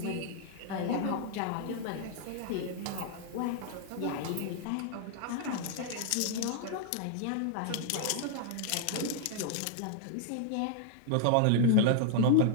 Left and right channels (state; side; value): different; both; correlation -0.01